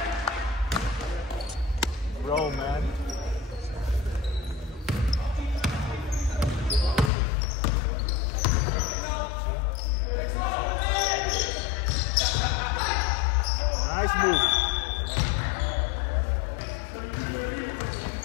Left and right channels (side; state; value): right; drops out; at 7.1 s